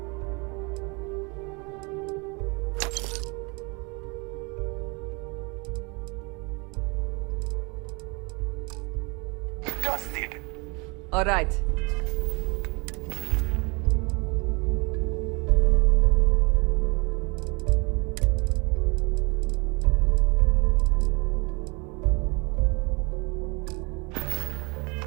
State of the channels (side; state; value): left; quieter; 29.2 dB